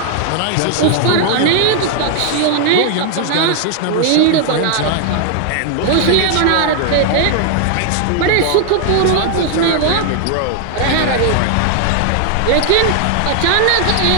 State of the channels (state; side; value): different; both; correlation 0.00